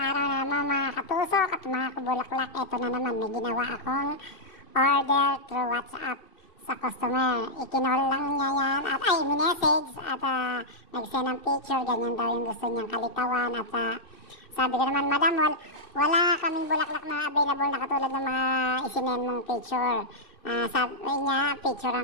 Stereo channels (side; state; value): right; late; 2.7 ms